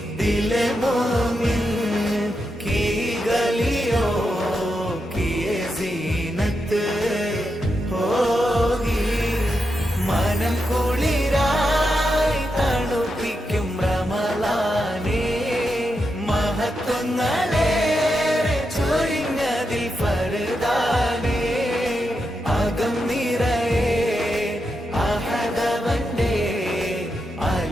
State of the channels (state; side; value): normal; both; correlation 0.86